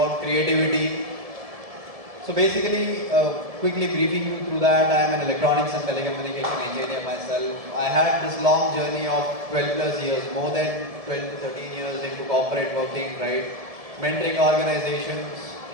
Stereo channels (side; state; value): left; late; 1.7 ms